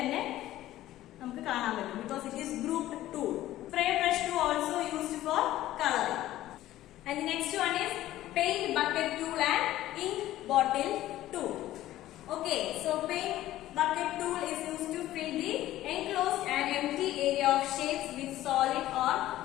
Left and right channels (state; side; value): quieter; right; 14.6 dB